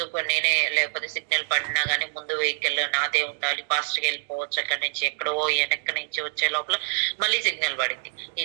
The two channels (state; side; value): silent; left; digital silence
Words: నేనే లేకపోతే సిగ్నల్ పడినా గానీ ముందు వెహికల్ నాదే ఉండాలి, ఫాస్ట్ గా వెళ్ళిపోవచ్చు. అక్కడి నుంచి ఎక్కడో వెనక్కి నుంచి వచ్చే లోపల మళ్ళీ సిగ్నల్ పడింది.